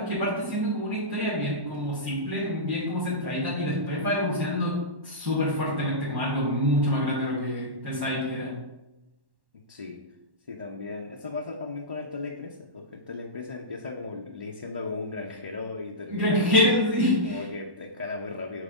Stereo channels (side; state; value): left; late; 1.1 ms